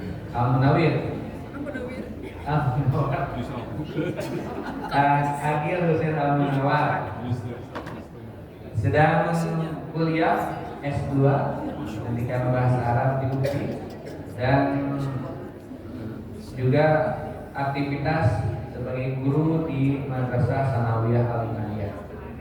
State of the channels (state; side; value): identical; both; correlation 1.00